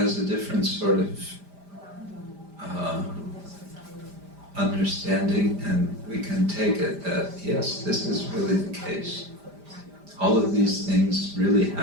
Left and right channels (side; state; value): left; late; 5.0 ms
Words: a different sort of understanding, and we can take it that, yes, this is really the case. All of these things really